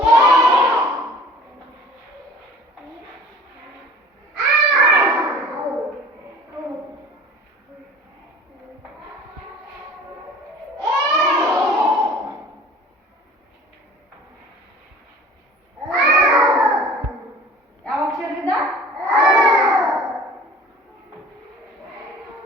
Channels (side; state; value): both; normal; correlation 0.46